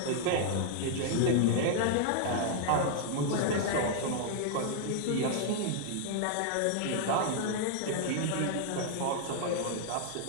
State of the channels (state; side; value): different; both; correlation 0.00